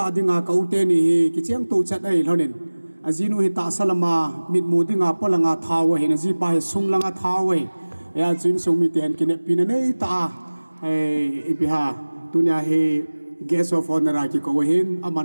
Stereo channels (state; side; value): inverted; both; correlation -1.00